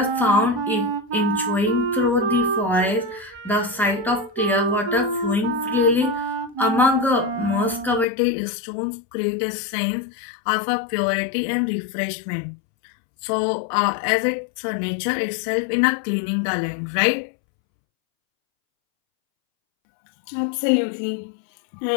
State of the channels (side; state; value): right; drops out; at 8.1 s